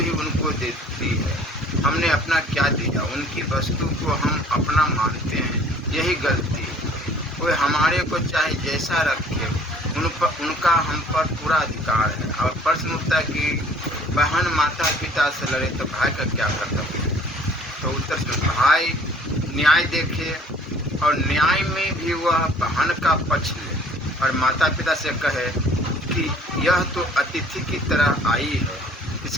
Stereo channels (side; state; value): both; normal; correlation 0.54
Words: उनको देती है। हमने अपना क्या दिया, उनकी वस्तु को हम अपना मानते हैं, यही गलती है। कोई हमारे को चाहे जैसा रखे, उनका हम पर पूरा अधिकार है। और प्रश्न उठता है कि बहन माता पिता से लड़े तो भाई का क्या कर्तव्य। तो उत्तर से भाई न्याय देखे और न्याय में भी वह बहन का पक्ष ले और माता पिता से कहे कि यह तो अतिथि की तरह आई है,